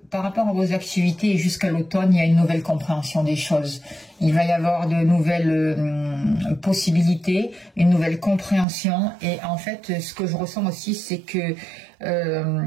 par rapport à vos activités, jusqu'à l'automne, il y a une nouvelle compréhension des choses. Il va y avoir de nouvelles possibilités, une nouvelle compréhension, et en fait ce que je ressens aussi, c'est que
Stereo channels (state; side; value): drops out; left; at 8.7 s